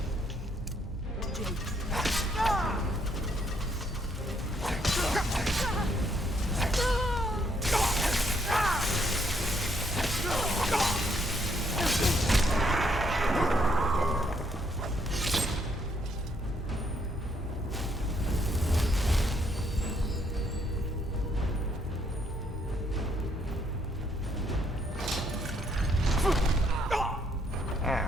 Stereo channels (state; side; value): normal; both; correlation 0.71